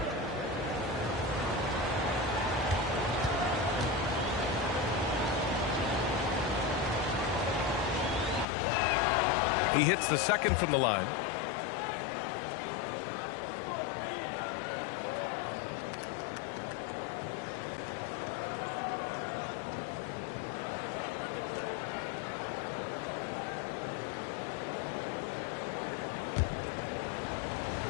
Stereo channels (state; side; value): drops out; right; at 8.5 s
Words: He hits the second from the line.